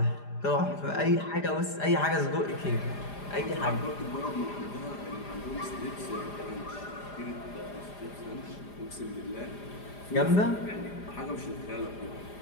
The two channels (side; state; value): right; late; 4.9 ms